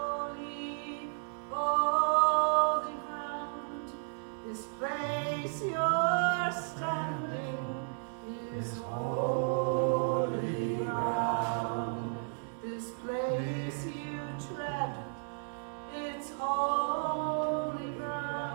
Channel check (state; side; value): silent; left; 55 dB below the other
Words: holy ground. This place you're standing is holy ground. This place you tread, it's holy